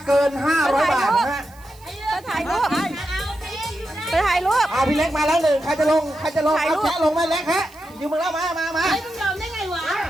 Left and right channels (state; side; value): noise; right; hiss, 26 dB below the sound